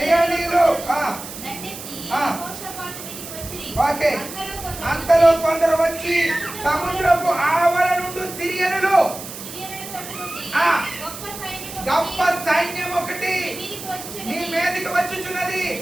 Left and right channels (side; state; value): right; noise; hiss, 11 dB below the sound